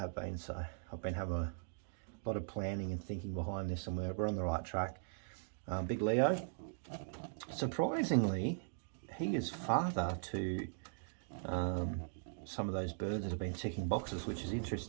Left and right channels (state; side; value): silent; left; digital silence